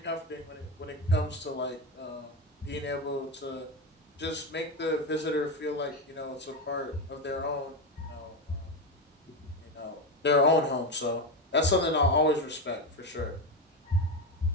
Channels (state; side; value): normal; both; correlation 0.14